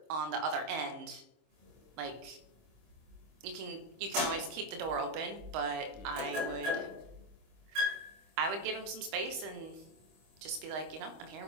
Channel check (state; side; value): late; left; 25 ms